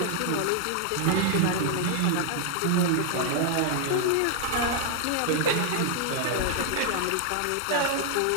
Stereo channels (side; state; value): both; different; correlation 0.00